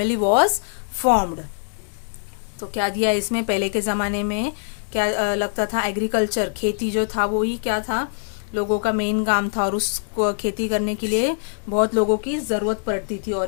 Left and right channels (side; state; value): right; silent; digital silence